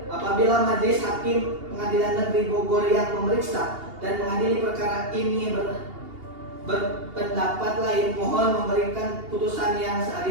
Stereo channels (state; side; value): late; left; 2.8 ms